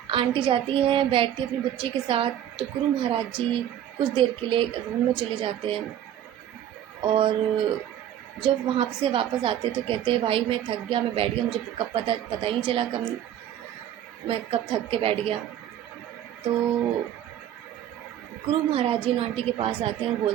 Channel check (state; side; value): quieter; left; 10.8 dB